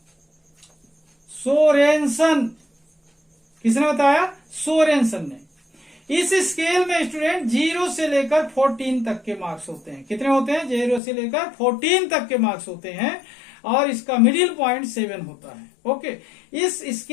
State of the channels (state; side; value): drops out; right; at 11.0 s